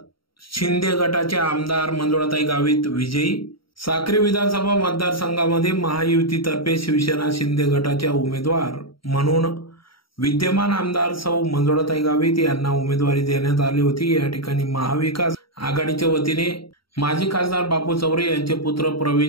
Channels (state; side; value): late; right; 0.74 ms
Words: शिंदे गटाचे आमदार मंजुळाताई गावित विजयी। साक्री विधानसभा मतदारसंघामध्ये महायुतीतर्फे शिवसेना शिंदे गटाच्या उमेदवार म्हणून विद्यमान आमदार सौ मंजुळाताई गावित यांना उमेदवारी देण्यात आली होती। या ठिकाणी महाविकास आघाडीच्या वतीने माजी खासदार बापू चौरे यांचे पुत्र